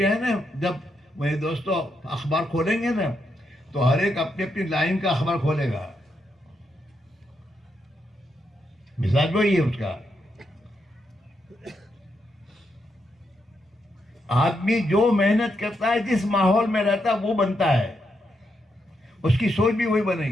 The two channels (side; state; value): both; normal; correlation 0.81